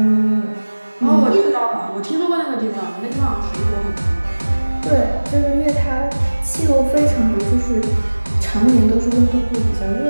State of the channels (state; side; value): inverted; both; correlation -1.00